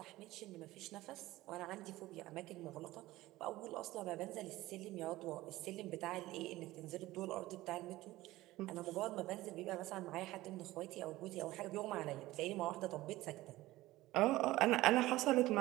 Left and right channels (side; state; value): left; quieter; 17.4 dB